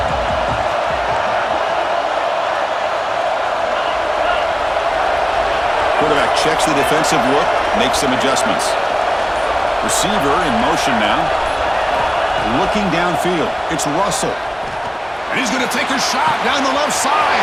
Quarterback checks the defensive look, makes some adjustments. Receiver in motion now. Looking downfield. It's Russell. And he's going to take a shot down the left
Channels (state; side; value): identical; both; correlation 1.00